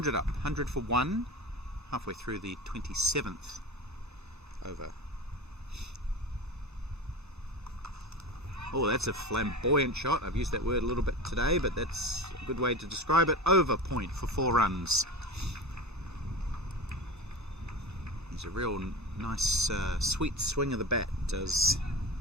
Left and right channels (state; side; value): normal; both; correlation 0.30